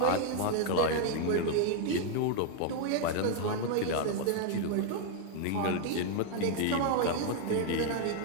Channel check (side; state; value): both; different; correlation 0.00